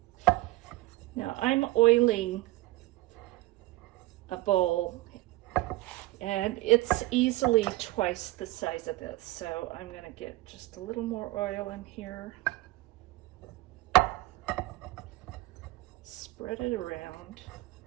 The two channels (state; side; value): quieter; left; 18.9 dB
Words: Now I'm oiling a bowl, and it's easily twice the size of this. So I'm gonna get just a little more oil in here. Spread it around.